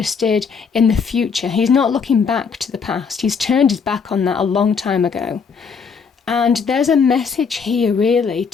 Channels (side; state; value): right; quieter; 5.8 dB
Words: in the future. He's not looking back to the past. He's turned his back on that a long time ago. And there's a message here really